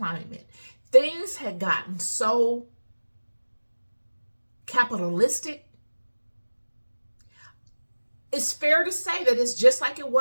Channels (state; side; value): inverted; both; correlation -1.00